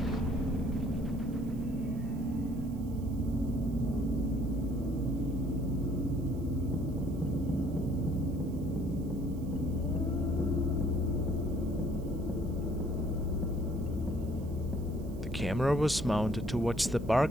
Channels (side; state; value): right; noise; hiss, 26 dB below the sound